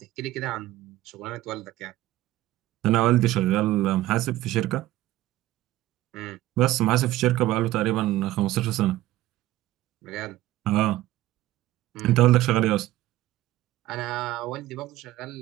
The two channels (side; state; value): left; quieter; 15.7 dB